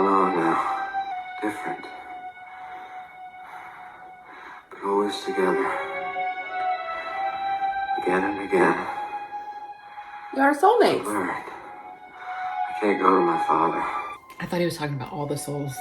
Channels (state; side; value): identical; both; correlation 1.00